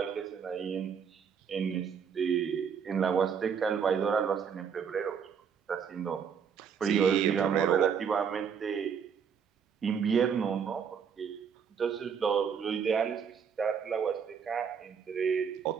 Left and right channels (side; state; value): left; quieter; 7.0 dB